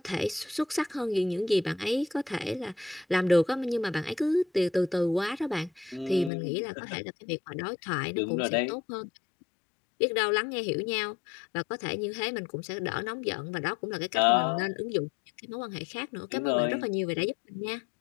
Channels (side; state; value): right; drops out; at 6.3 s